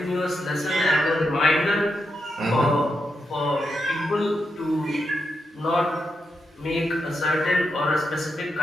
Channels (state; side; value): normal; both; correlation 0.85